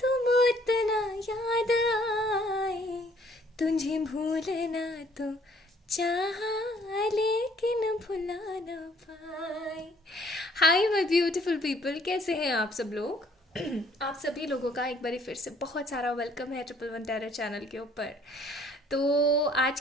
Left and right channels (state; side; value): normal; both; correlation 0.61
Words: उतना याद आए, तुझे भूलना तो चाहा लेकिन भुला ना पाए। हाय माय ब्यूटीफुल पीपल, कैसे हैं आप सब लोग? आप सभी लोगों का एक बार फिर से बहुत सारा वेलकम है ट्रिपल वन टेरर चैनल के ऊपर। तो आज